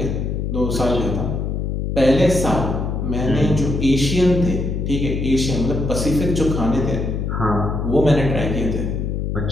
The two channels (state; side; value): noise; left; hum, 2 dB below the sound